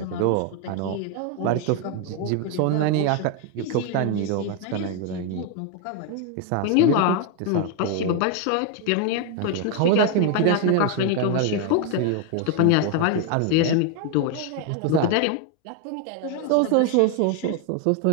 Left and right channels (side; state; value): both; different; correlation 0.01